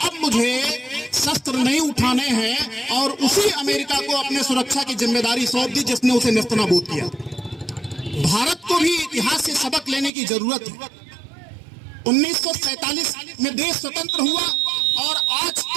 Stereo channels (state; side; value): drops out; left; at 10.1 s